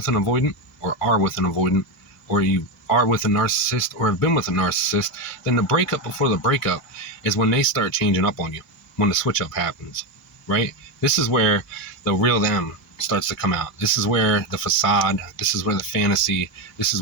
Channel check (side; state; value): both; normal; correlation 0.12